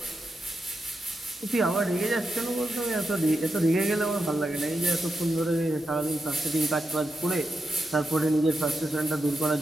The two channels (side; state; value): both; normal; correlation 0.87